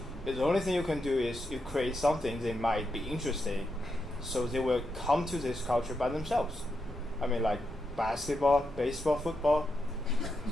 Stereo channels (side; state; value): both; normal; correlation 0.84